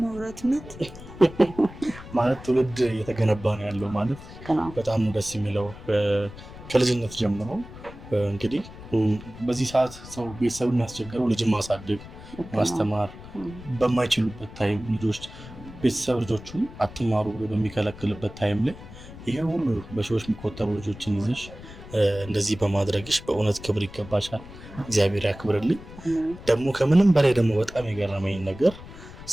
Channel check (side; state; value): left; noise; rumble, 15 dB below the sound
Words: ማውራትነት ማለት ትውልድ እየተገነባ ነው ያለው ማለት በጣም ደስ የሚለው ከልጅነት ጀምሮ እንግዲህ በዚህ ሰዓት ሰው ቤተሰብ የሚያስቸግረው ልጅን ማሳደግ ማስተማር በማይችሉበት ታይም ልጆች ቤተሰብ ልጆቹን አትማሩ ብሎ በሚከለክልበት ታይም ላይ ይሄ ሁሉ በሺዎች የሚቆጠሩ ልጆችን ይዘሽ እንደዚህ በማድረግሽ በእውነት ክብር ይገባሻል። እግዚአብሔር ያክብርልኝ። ደግሞ ከምንም በላይ ደግሞ በጣም የገረመኝ ነገር